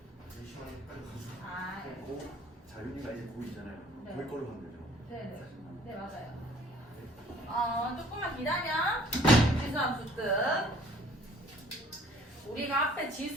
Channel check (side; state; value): both; normal; correlation 0.55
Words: 4시간에 빨리 가서 아, 자윤이가 이제 고2잖아요. 네. 거기 걸로 가면 되죠. 네네. 네, 맞아요. 조금만 기다려. 지수함수 뜻. 우리가 앞에